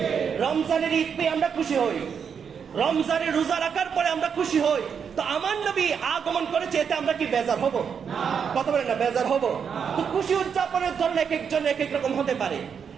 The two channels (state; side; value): quieter; left; 6.9 dB